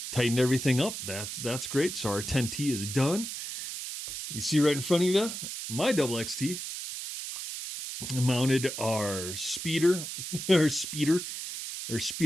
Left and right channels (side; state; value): right; noise; hiss, 6 dB below the sound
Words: tightened everything up. That's great. So our 10T is done. You see right in front of you, my double XT. Mounted our speeder